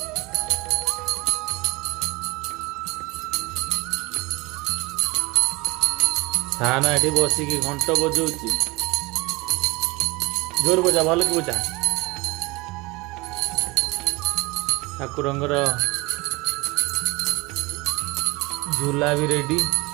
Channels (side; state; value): left; quieter; 23.7 dB